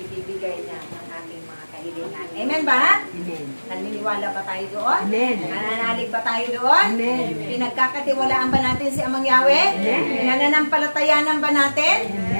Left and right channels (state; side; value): inverted; both; correlation -1.00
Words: niya ng ating mga kahilingan. Amen ba? Amen. Naniniwala ba tayo doon? Amen. Nananalig ba tayo doon? Amen. Pinagkakatiwalaan ba natin si Amang Yahweh? Amen. Pinananampalatayanan ba natin?